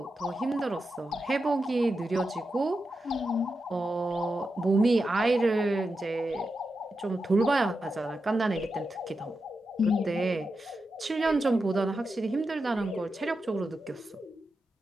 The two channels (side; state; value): both; normal; correlation 0.89